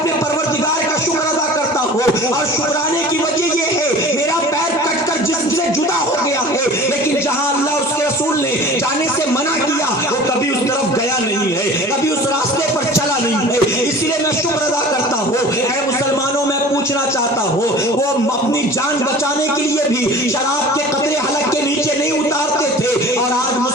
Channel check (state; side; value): normal; both; correlation 0.42